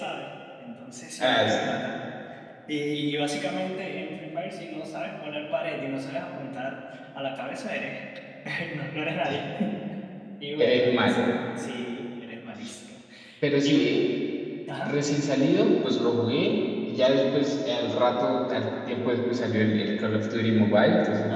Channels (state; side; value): identical; both; correlation 1.00